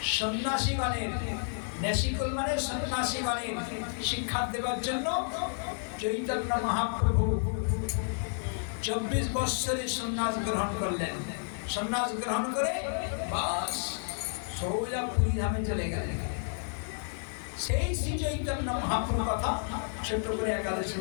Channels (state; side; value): silent; right; digital silence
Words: সন্ন্যাসীগণের, নেশিকুল মানে সন্ন্যাসীগণের শিক্ষা দেওয়ার জন্য চৈতন্য মহাপ্রভু 24 বছরে সন্ন্যাস গ্রহণ করলেন। সন্ন্যাস গ্রহণ করে বাস সোজা পুরী ধামে চলে গেলেন। সেই শ্রী চৈতন্য মহাপ্রভুর কথা ছোট্ট করে একাদশী